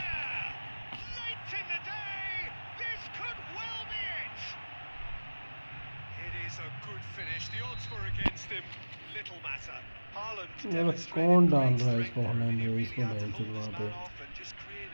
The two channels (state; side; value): inverted; both; correlation -1.00